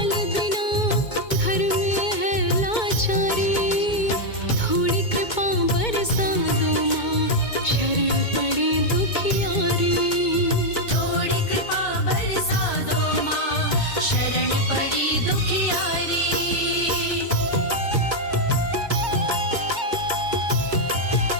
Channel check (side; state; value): right; late; 2.2 ms